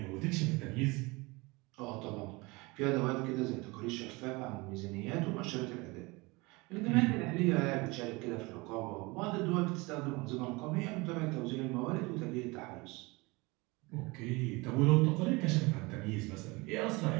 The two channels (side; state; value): left; quieter; 24.6 dB